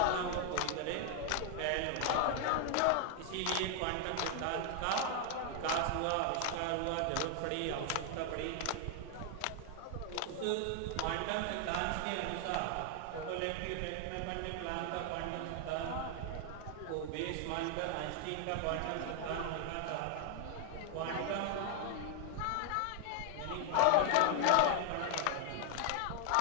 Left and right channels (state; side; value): different; both; correlation 0.00